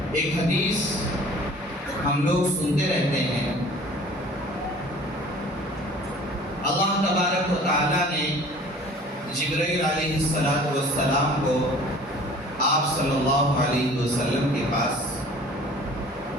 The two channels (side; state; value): both; normal; correlation 0.48